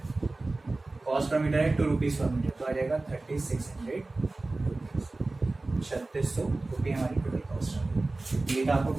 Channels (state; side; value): quieter; left; 3.2 dB